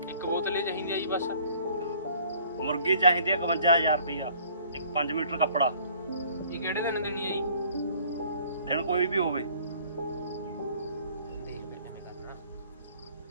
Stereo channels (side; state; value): both; inverted; correlation -0.54